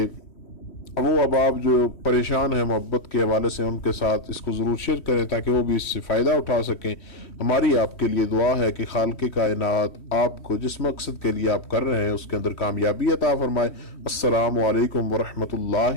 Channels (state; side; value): late; right; 3.1 ms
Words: وہ اب آپ جو پریشان ہیں محبت کے حوالے سے ان کے ساتھ اس کو ضرور شیئر کریں تاکہ وہ بھی اس سے فائدہ اٹھا سکیں۔ ہماری آپ کے لیے دعا ہے کہ خالق کائنات آپ کو جس مقصد کے لیے آپ کر رہے ہیں اس کے اندر کامیابی عطا فرمائے۔ السلام علیکم ورحمۃ